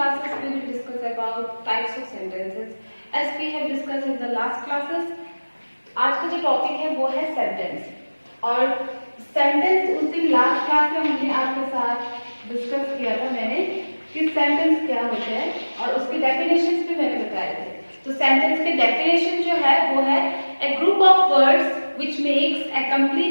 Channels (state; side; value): inverted; both; correlation -1.00